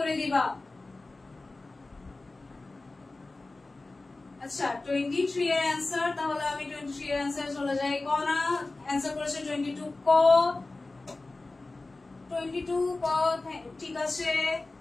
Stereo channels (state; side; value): quieter; right; 3.2 dB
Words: দিবা। আচ্ছা, 23 এর অ্যান্সার, তাহলে আমি 23 এর অ্যান্সার চলে যাই। ক না, অ্যান্সার করেছে 22 ক। 22 ক, ঠিক আছে।